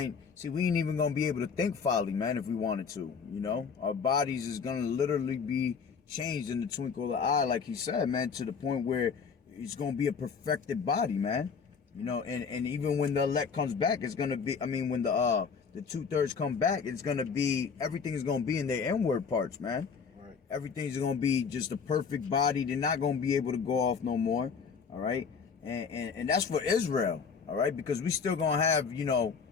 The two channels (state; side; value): quieter; right; 5.9 dB